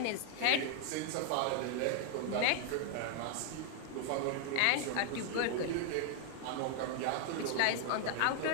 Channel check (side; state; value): both; different; correlation 0.00